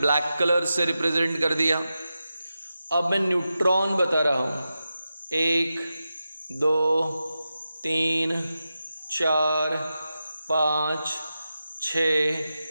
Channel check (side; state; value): both; inverted; correlation -0.91